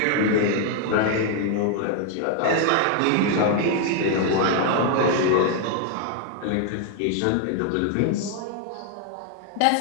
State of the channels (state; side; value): different; both; correlation 0.00